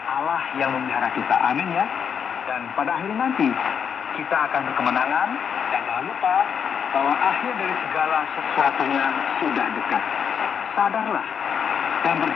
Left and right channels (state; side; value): quieter; right; 7.4 dB